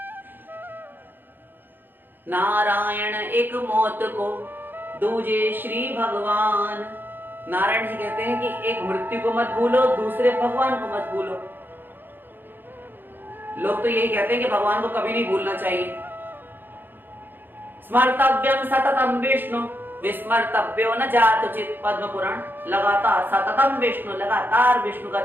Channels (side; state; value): left; late; 0.095 ms